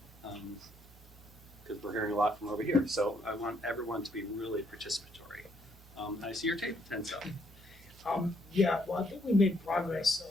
because we're hearing a lot from over here. So I want everyone to be really participatory. I see your table tense up. Yeah, well, I think we made progress,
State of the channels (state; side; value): normal; both; correlation 0.71